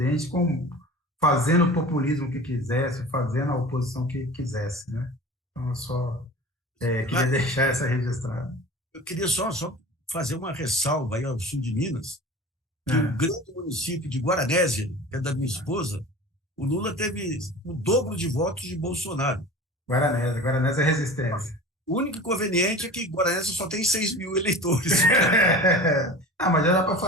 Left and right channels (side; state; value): both; normal; correlation 0.37